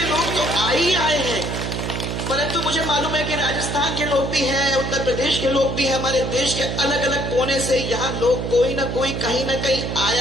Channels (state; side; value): noise; right; hum, 3 dB below the sound